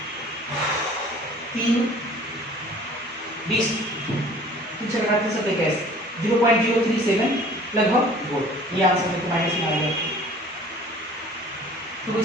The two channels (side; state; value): both; normal; correlation 0.49